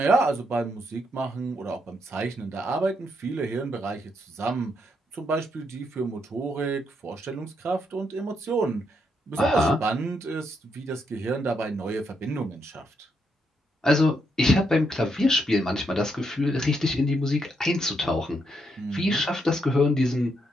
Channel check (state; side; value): normal; both; correlation 0.78